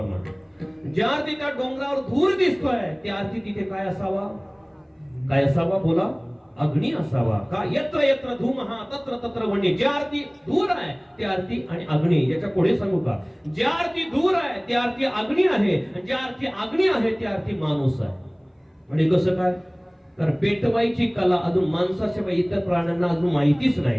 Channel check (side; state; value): both; identical; correlation 1.00